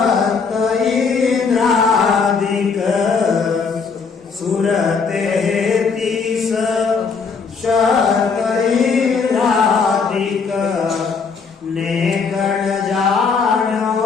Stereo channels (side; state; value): right; quieter; 5.2 dB